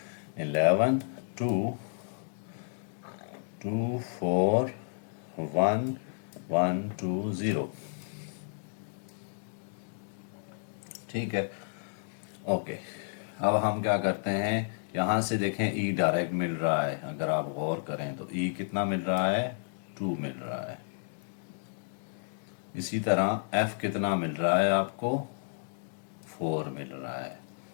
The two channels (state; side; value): silent; right; digital silence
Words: 11 2 2 4 1 1 2 0। ठीक है, ओके। अब हम क्या करते हैं, यहाँ से देखें ई डायरेक्ट मिल रहा है, अगर आप गौर करें तो ई कितना मिल रहा है, 2 मिल रहा है। इसी तरह एफ कितना मिल रहा है आपको, 4 मिल रहा है।